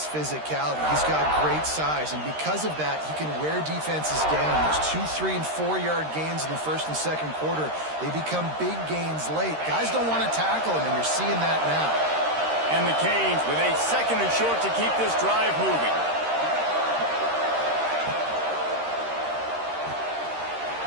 He's got great size, and because of that, he can wear defenses down. There's 2, 3, and 4-yard gains in the 1st and 2nd quarter. They become big gains late. Guys don't want to tackle him, and you're seeing that now. And the Canes with a 2nd and short to keep this drive moving.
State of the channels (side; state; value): left; late; 13 ms